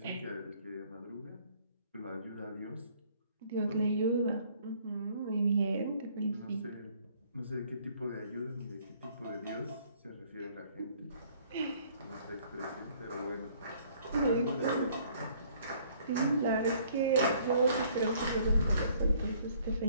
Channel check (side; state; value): both; inverted; correlation -0.60